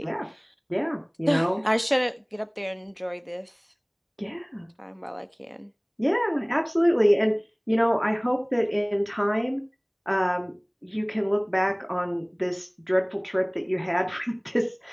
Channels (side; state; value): both; identical; correlation 1.00